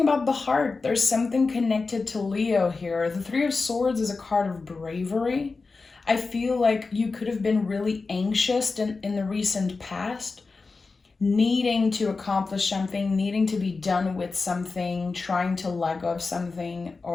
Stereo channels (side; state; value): right; quieter; 4.1 dB